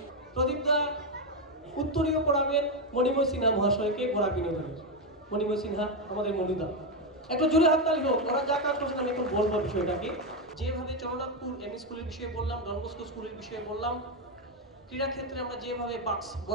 প্রদীপ দা উত্তরীয় পড়াবেন মণিময় সিনহা মহাশয়কে বরাক বিনোদনের। মণিময় সিনহা আমাদের মনুদা, একটু জোরে হাততালি হোক। ওরা যা কাজ করছেন আমি এখন বলবো বিষয়টাকে। যেভাবে চরণনাথপুর এমই স্কুলের বিষয়ে বললাম, ডন বস্কো স্কুলের বিষয়ে বললাম, ক্রীড়া ক্ষেত্রে আমরা যেভাবে বাক্স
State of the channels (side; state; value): both; normal; correlation 0.07